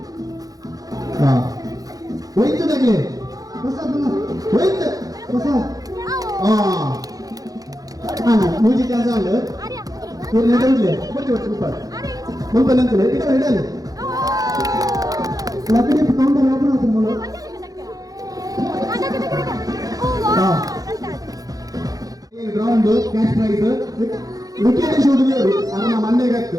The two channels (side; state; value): left; late; 0.17 ms